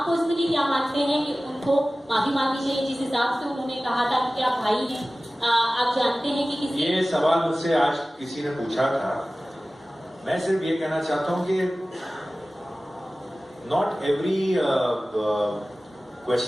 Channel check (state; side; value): normal; both; correlation 0.97